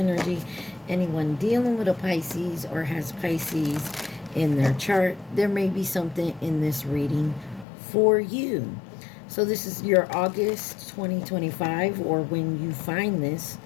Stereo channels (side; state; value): right; drops out; at 7.7 s